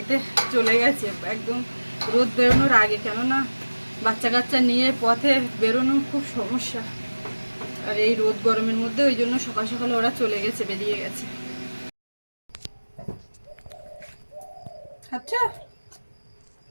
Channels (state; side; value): inverted; both; correlation -1.00